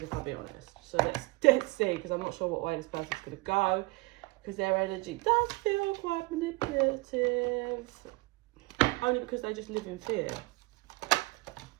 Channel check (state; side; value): quieter; left; 24.8 dB